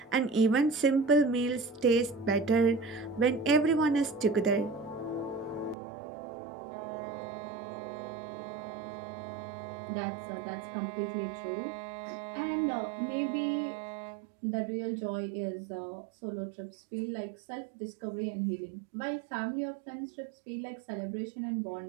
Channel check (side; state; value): left; drops out; at 5.8 s